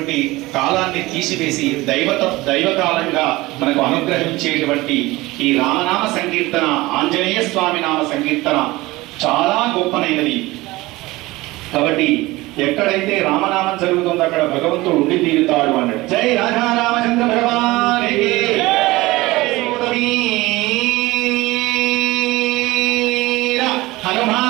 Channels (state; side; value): quieter; left; 20.1 dB